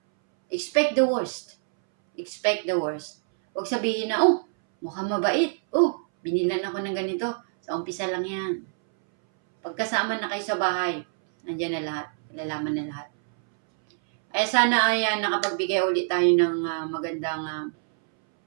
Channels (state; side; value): silent; left; 61 dB below the other